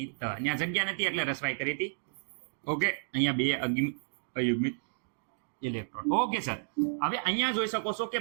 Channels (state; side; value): silent; left; digital silence